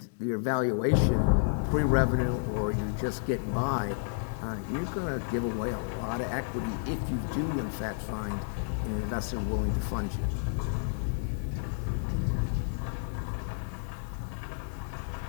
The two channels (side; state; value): right; silent; digital silence